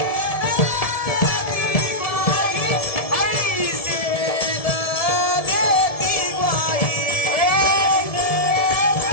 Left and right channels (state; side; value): late; right; 1.7 ms